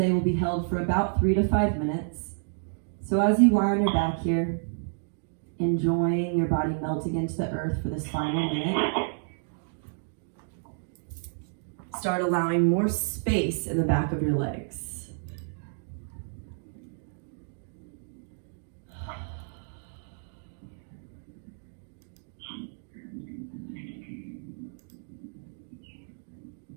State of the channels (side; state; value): left; silent; digital silence